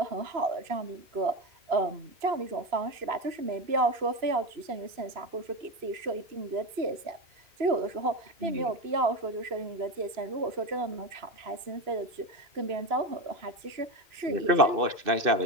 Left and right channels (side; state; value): left; late; 2.9 ms